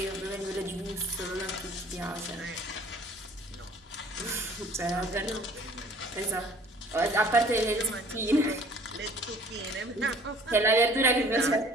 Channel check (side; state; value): both; normal; correlation 0.52